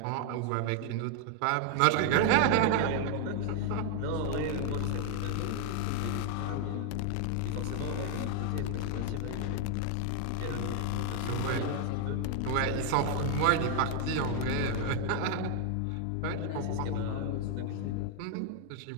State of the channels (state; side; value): different; both; correlation 0.00